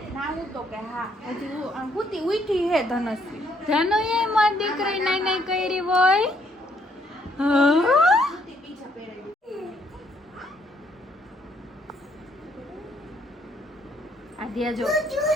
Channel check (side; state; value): both; normal; correlation 0.69